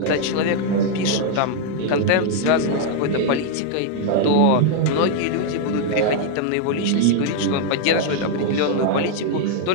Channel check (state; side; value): different; both; correlation 0.00